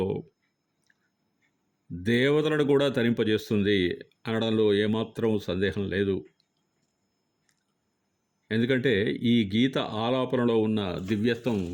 దేవతలను కూడా తరింపజేస్తుంది అనడంలో ఏమాత్రం సందేహం లేదు. ఎందుకంటే ఈ గీత ఆలాపనలో ఉన్న దివ్యత్వం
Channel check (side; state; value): both; identical; correlation 1.00